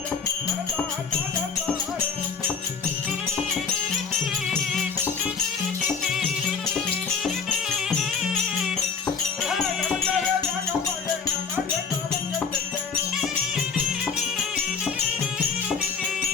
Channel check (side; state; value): right; quieter; 5.8 dB